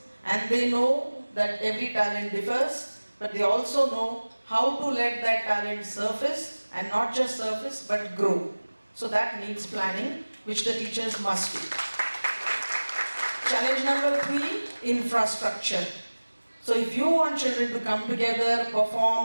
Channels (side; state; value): both; inverted; correlation -1.00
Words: And they know that every talent differs, but they also know how to let that talent surface, and not just surface, but grow. So that needs planning, which the teachers must do. Challenge number 3, infrastructure. So if you want children to come together,